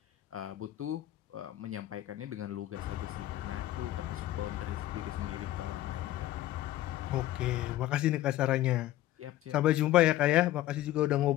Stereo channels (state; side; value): quieter; right; 14.4 dB